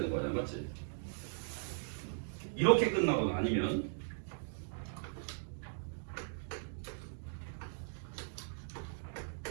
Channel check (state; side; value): silent; left; digital silence